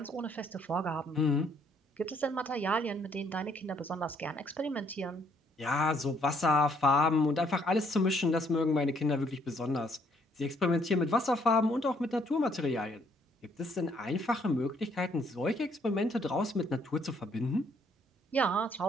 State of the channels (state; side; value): normal; both; correlation 0.67